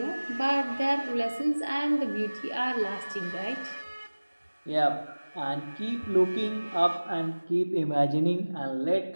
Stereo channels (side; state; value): both; inverted; correlation -1.00